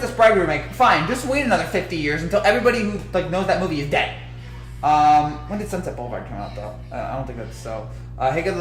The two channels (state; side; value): identical; both; correlation 1.00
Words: Bride remake, fine. Just wait another 50 years until everybody who like knows that movie is dead. When did Sunset Boulevard come out though? I don't think that's so.